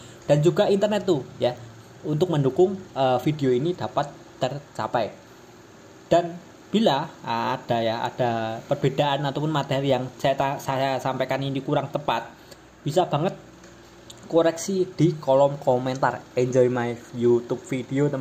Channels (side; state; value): both; identical; correlation 1.00